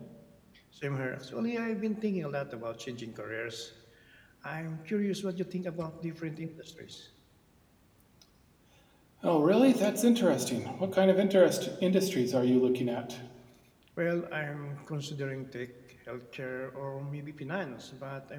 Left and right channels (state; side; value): identical; both; correlation 1.00